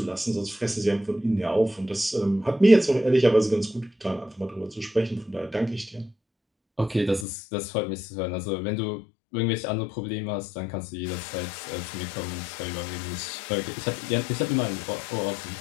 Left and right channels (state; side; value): drops out; right; at 7.2 s